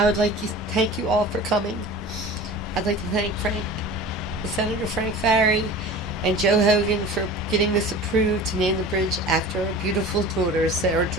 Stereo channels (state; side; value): normal; both; correlation 0.38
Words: would like to thank you all for coming. I'd like to thank Senator Frank Farry and Joe Hogan for getting this approved to name the bridge after our beautiful daughter, Sarah